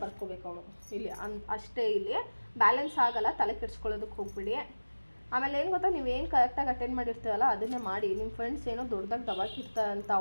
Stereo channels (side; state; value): both; inverted; correlation -1.00